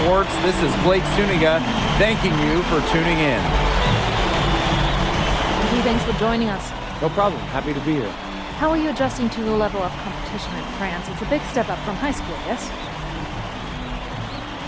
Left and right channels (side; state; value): both; identical; correlation 1.00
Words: this is Blake Suniga thanking you for tuning in. Thanks for joining us. No problem. Happy to be here. How are you adjusting to the level of competition in France? It's a big step up from high school, yes?